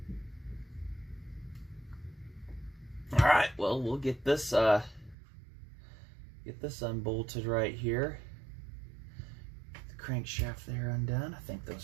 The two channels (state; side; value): drops out; left; at 5.2 s